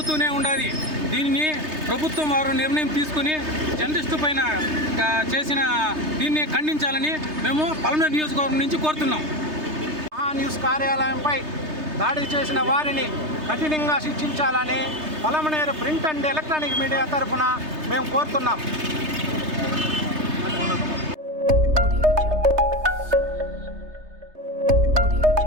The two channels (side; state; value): left; late; 3.3 ms